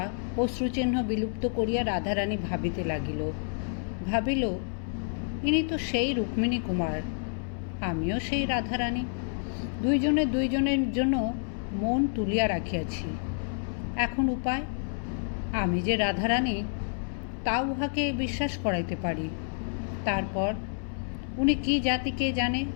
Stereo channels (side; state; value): right; silent; digital silence